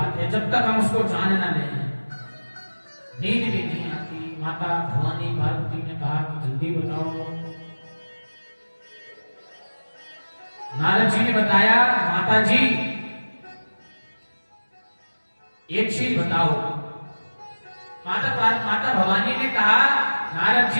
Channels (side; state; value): both; inverted; correlation -1.00